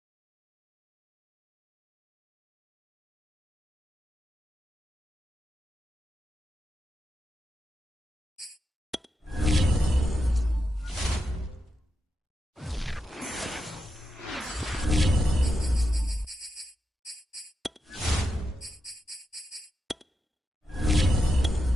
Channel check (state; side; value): normal; both; correlation 0.87